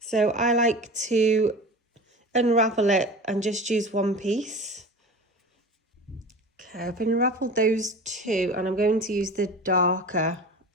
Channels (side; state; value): both; normal; correlation 0.35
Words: So I like to unravel it and just use 1 piece. Okay, I've unraveled those 2, and I'm going to use the darker